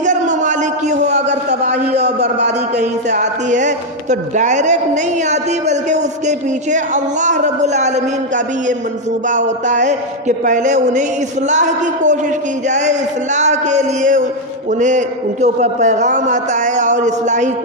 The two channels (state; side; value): normal; both; correlation 0.02